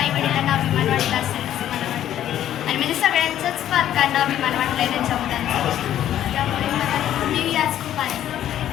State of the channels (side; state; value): right; quieter; 11.5 dB